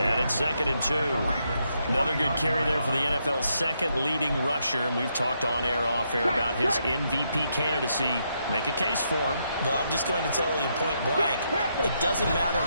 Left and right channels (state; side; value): inverted; both; correlation -0.78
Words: and it's 2nd and 2. Another good carry there for the NFL's second leading rusher, and we've talked on air, off air about his MVP candidacy. Make a case for him. Well, I'm just going to tell you point blank, it doesn't matter